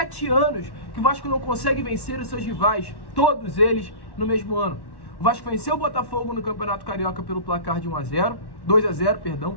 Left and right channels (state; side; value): late; right; 1.1 ms